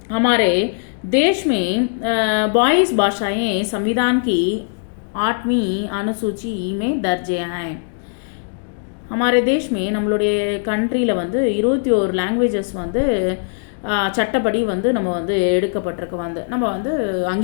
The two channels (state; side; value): silent; right; digital silence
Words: हमारे देश में 22 भाषाएं संविधान की 8वीं अनुसूची में दर्ज हैं. हमारे देश में நம்மளுடைய கண்ட்ரியில் வந்து 21 லாங்குவேஜஸ் வந்து சட்டப்படி வந்து நம்ம வந்து எடுக்கப்பட்டிருக்கு. வந்து நம்ம வந்து